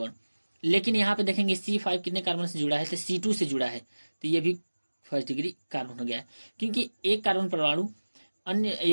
लेकिन यहाँ पे देखेंगे C5 कितने कार्बन से जुड़ा है, तो C2 से जुड़ा है, तो ये भी फर्स्ट डिग्री कार्बन हो गया है। क्योंकि एक कार्बन परमाणु अन्य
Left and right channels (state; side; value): inverted; both; correlation -1.00